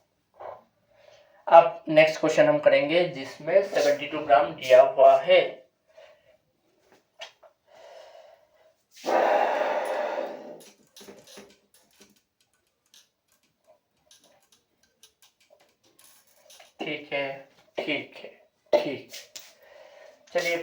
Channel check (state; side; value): identical; both; correlation 1.00